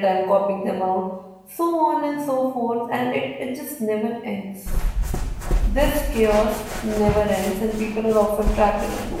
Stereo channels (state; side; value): identical; both; correlation 1.00